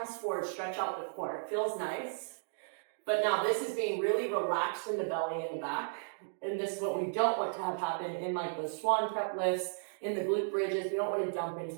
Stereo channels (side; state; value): left; silent; digital silence